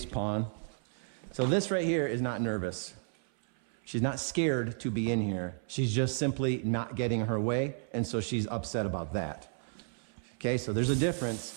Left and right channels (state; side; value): silent; left; 56 dB below the other